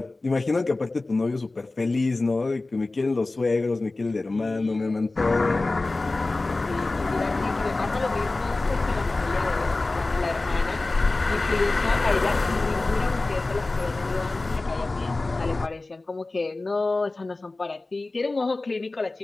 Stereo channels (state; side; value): quieter; right; 3.2 dB